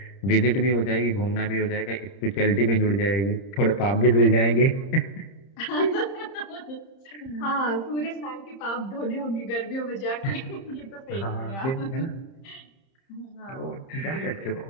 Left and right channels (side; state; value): right; late; 30 ms